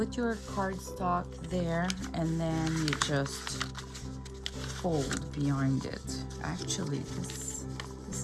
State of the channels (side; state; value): both; identical; correlation 1.00